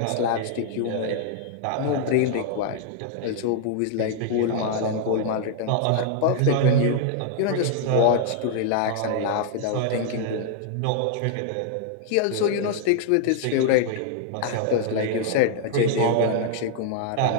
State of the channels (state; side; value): different; both; correlation -0.01